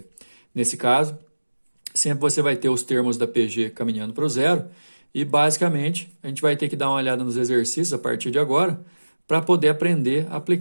Nesse caso, sempre você vai ter os termos da PG caminhando para o zero e basicamente a gente vai ter que dar uma olhada nos exercícios a partir de agora para poder aprender a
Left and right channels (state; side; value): inverted; both; correlation -1.00